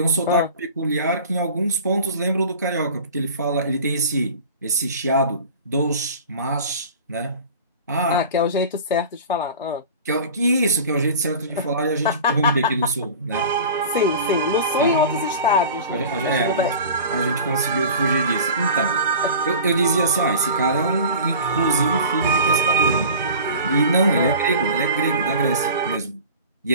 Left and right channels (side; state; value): both; inverted; correlation -0.38